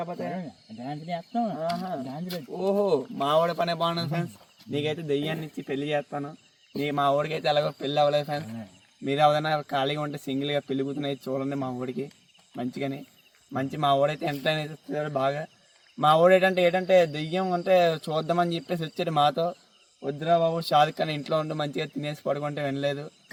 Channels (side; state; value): both; identical; correlation 1.00